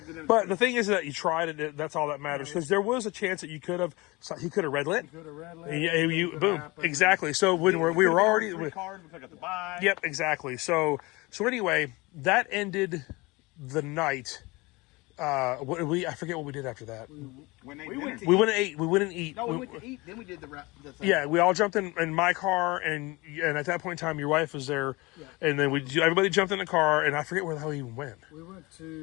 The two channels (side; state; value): right; quieter; 23.8 dB